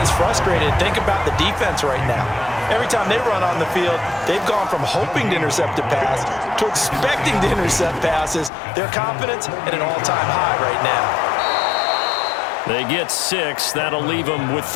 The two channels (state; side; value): drops out; right; at 8.5 s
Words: frustrated. Think about the defense right now. Every time they run on the field, they've gone from hoping to intercept a pass to expecting to intercept passes. Their confidence at an all-time high right now. They get 6. That'll leave them with